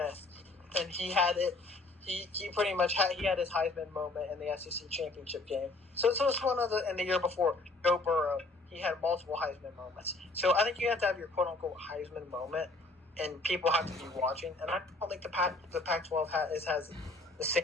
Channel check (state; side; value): quieter; right; 3.0 dB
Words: and he had it. He pretty much had his Heisman moment in the SEC championship game. So it's one of the. And the year before, Joe Burrow, he had multiple Heisman moments. So I think you have to have your quote unquote Heisman moment, and people have to be watching. And I don't think the Pac-12 has the